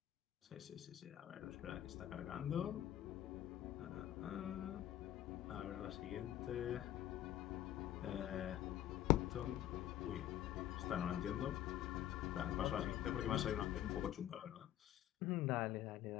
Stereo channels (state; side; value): quieter; right; 12.5 dB